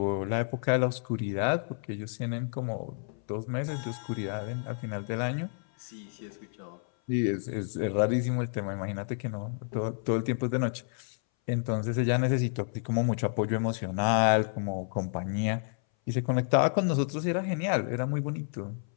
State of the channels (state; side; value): silent; right; 58 dB below the other